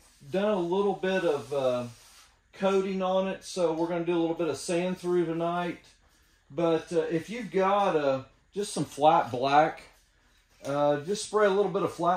done a little bit of coating on it, so we're going to do a little bit of sand through tonight. But if you've got just some flat black, just spray a little bit of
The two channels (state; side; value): identical; both; correlation 1.00